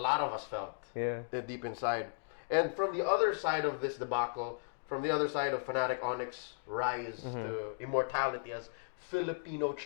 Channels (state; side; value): silent; right; digital silence